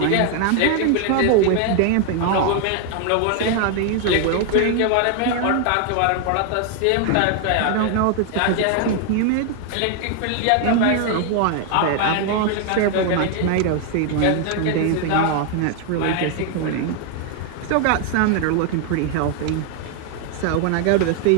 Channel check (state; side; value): different; both; correlation 0.00